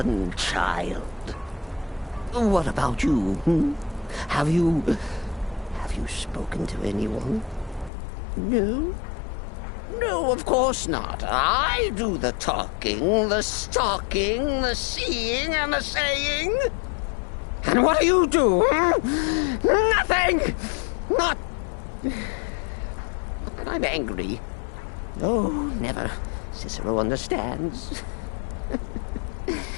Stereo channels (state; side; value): drops out; right; at 7.9 s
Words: What about you? Have you spoken to anyone? No? No, of course not. I do the talking, the stalking, the seeing, and the saying. And what do you do? Nothing! Not that I'm angry. Oh, never. Cicero understands.